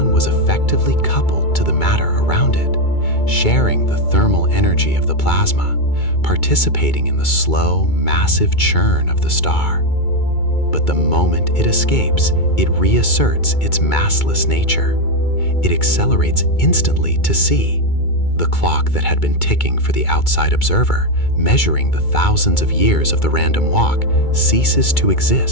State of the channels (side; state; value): right; late; 2.2 ms